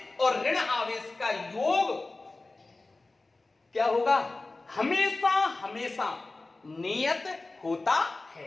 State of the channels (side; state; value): right; quieter; 3.3 dB